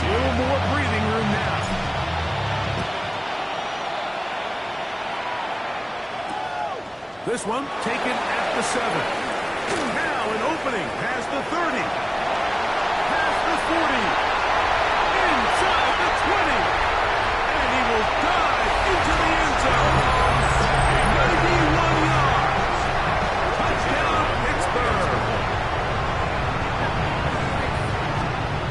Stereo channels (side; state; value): both; identical; correlation 1.00